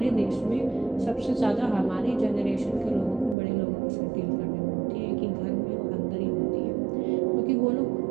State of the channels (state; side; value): drops out; left; at 3.4 s